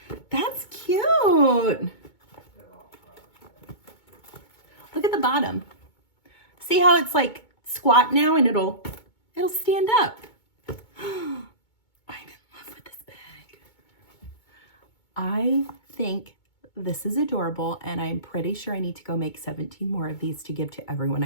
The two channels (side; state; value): right; late; 2.2 ms